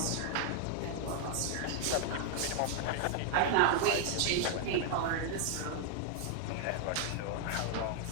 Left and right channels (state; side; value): different; both; correlation 0.00